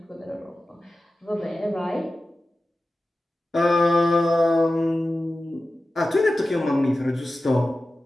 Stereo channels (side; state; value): both; normal; correlation 0.95